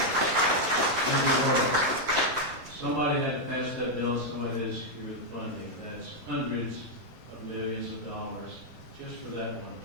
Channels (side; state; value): both; normal; correlation 0.00